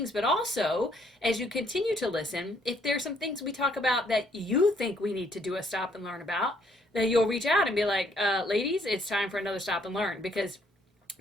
but also as you continue to listen, if there's some things we talk about that you think we need to do a stop and learn about, then you'll reach out and be like, ladies, it's time for another stop and learn, because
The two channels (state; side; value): normal; both; correlation 0.67